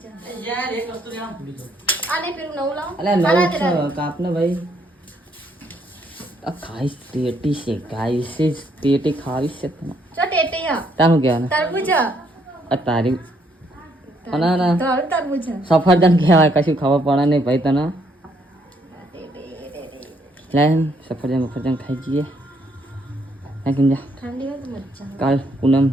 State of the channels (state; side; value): normal; both; correlation 0.71